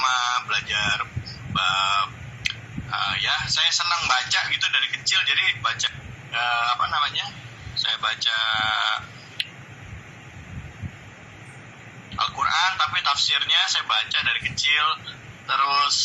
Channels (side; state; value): both; identical; correlation 1.00